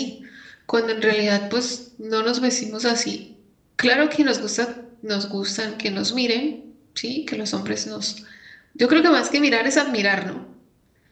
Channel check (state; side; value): identical; both; correlation 1.00